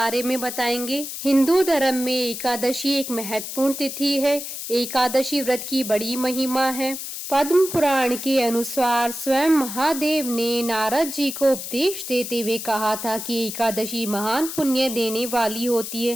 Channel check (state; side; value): noise; left; hiss, 7 dB below the sound